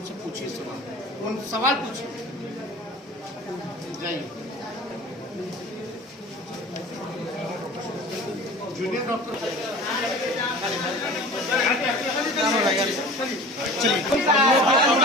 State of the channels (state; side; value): normal; both; correlation 0.40